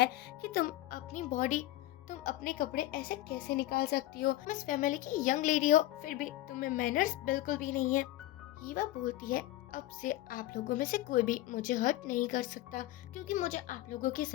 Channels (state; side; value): quieter; right; 15.9 dB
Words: कि तुम अपने कपड़े ऐसे कैसे निकाल सकती हो। तुम इस फैमिली की यंग लेडी हो, फिर भी तुम्हें मैनर्स बिल्कुल भी नहीं है। ईवा बोलती है अब से आप लोगों में से कोई भी मुझे हर्ट नहीं कर सकता, क्योंकि मुझे आप लोगों की